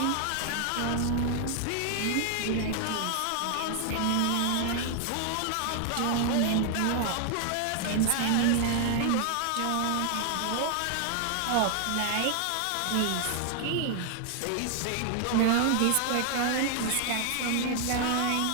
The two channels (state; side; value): different; both; correlation 0.00